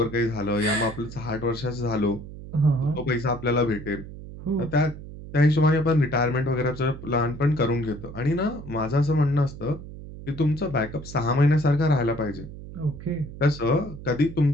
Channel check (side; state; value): right; noise; hum, 13 dB below the sound